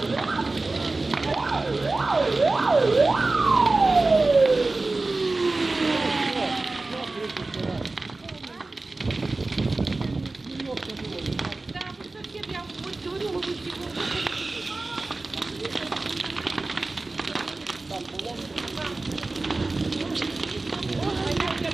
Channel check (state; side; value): quieter; left; 3.3 dB